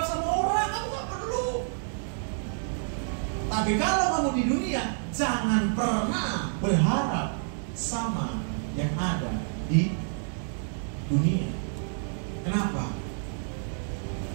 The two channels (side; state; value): left; silent; digital silence